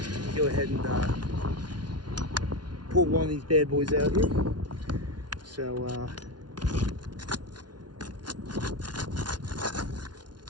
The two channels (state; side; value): late; left; 0.70 ms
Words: Go ahead and pull one of these bad boys out here. So